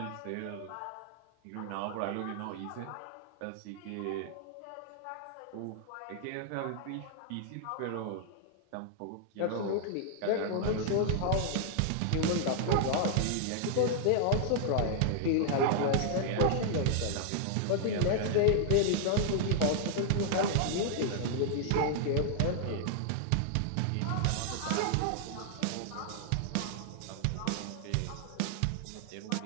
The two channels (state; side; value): different; both; correlation 0.00